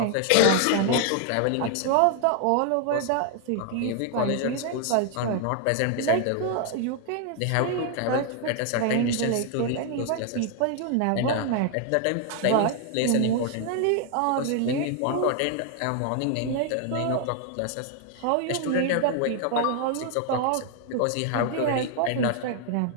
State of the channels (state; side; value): different; both; correlation 0.00